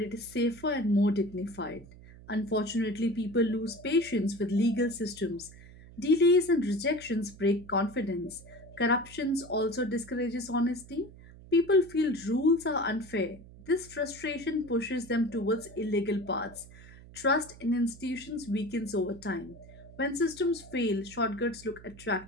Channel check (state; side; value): noise; right; hum, 19 dB below the sound